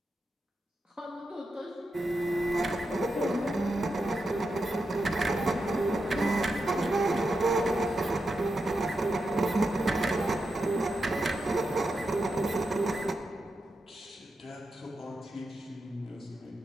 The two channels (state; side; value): normal; both; correlation 0.87